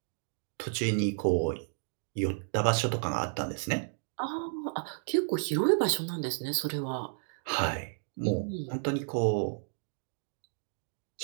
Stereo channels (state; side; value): silent; left; digital silence